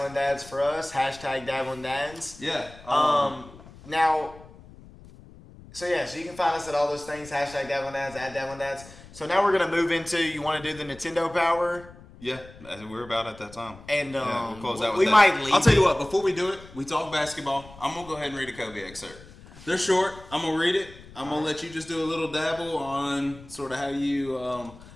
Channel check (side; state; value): left; noise; rumble, 20 dB below the sound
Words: Dads for us. Hashtag Dabbling Dads. yeah. Now, so you can find us at all those things. Hashtag Dabbling Dads, at Dabbling Dads. So now we're going to move into, you want to do the Nintendo Power? Yeah, we're about at that time. And we'll close out with we that. might leave. I'll tell you what, before we do it, we talk basketball. I'm going to go ahead and read a Kobe excerpt. They're short. I'm going to read it. I'm going to let you just do a little dabble on sort of how you...